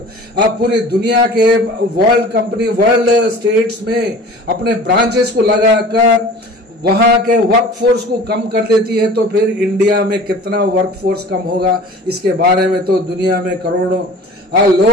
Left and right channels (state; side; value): normal; both; correlation 0.43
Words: पूरी दुनिया के वर्ल्ड स्टेट्स में अपने ब्रांचेस को लगाकर वहां के वर्कफोर्स को कम कर देती है। तो फिर इंडिया में कितना वर्कफोर्स कम होगा, इसके बारे में तो दुनिया में करोड़ों